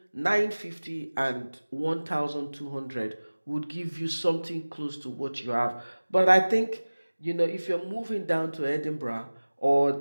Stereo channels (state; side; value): inverted; both; correlation -1.00